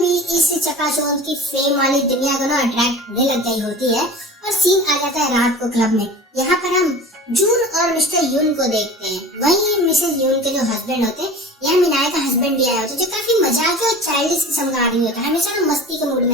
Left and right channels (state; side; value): normal; both; correlation 0.38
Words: इस चकाचौंध की फेम वाली दुनिया को ना अट्रैक्ट होने लग गई होती है और सीन आ जाता है रात को क्लब में। यहाँ पर हम जून और मिस्टर यून को देखते हैं। वहीं मिसेस यून के जो हस्बैंड होते हैं, यहाँ मिनाई का हस्बैंड भी आया होता है, जो काफी मजाक और चाइल्डिश किस्म का आदमी होता है, हमेशा ना मस्ती के मूड